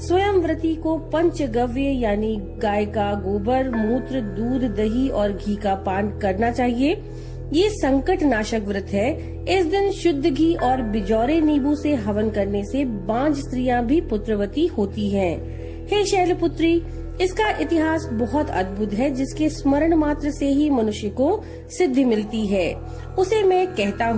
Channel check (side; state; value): both; identical; correlation 1.00